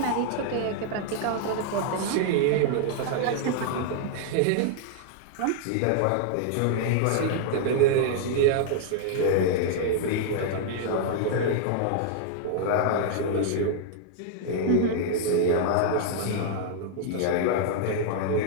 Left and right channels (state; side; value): different; both; correlation -0.01